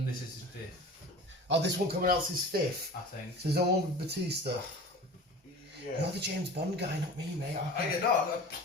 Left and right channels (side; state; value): both; normal; correlation 0.38